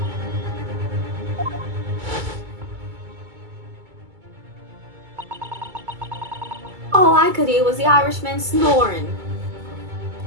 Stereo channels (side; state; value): left; late; 2.2 ms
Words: All I could hear was the Irishman snoring.